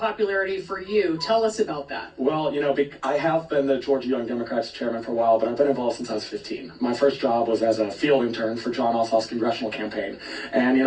for you. Tell us about that. Well, you know, I have been the Georgia Young Democrats chairman for a while, but I've been involved since I was 15. My first job was as a field intern for John Ossoff's congressional campaign. And, you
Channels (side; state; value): both; identical; correlation 1.00